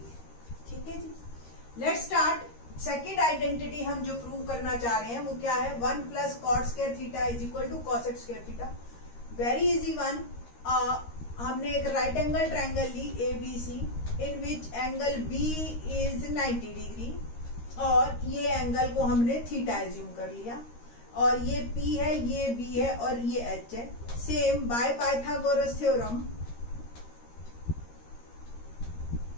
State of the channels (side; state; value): right; late; 13 ms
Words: है। ठीक है जी, लेट्स स्टार्ट। सेकेंड आइडेंटिटी हम जो प्रूव करना चाह रहे हैं वो क्या है? 1 plus cot square theta is equal to cosec square theta. Very easy one. हमने एक राइट एंगल ट्रायंगल ली ABC in which angle B is 90 degree और ये एंगल को हमने थीटा एज्यूम कर लिया और ये P है, ये B है और ये H है। Same by Pythagoras theorem